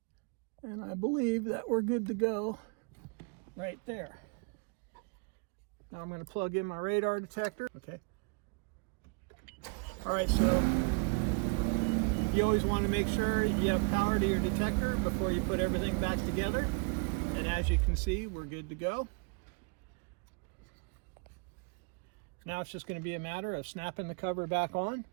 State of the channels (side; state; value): left; quieter; 34.9 dB